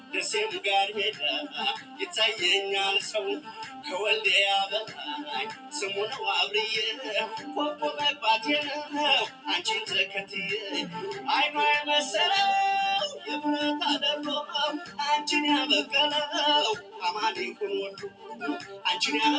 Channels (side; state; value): both; identical; correlation 1.00